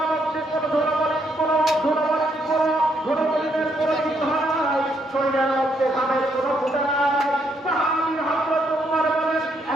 মধ্যে কোনো ধুলোবালি, কোনো ধুলোবালির কোনো কিছু নাই, শরীরের মধ্যে ঘামের কোনো ফুটা নাই। সাহাবী হযরত উমর বলেন,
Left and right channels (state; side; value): normal; both; correlation 0.74